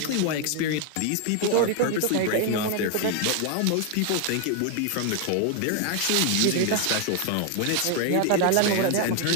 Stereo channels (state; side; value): different; both; correlation 0.00